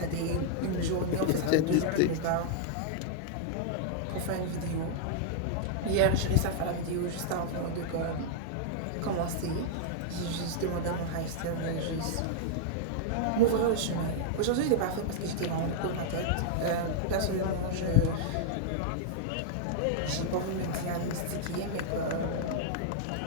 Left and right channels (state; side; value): different; both; correlation -0.01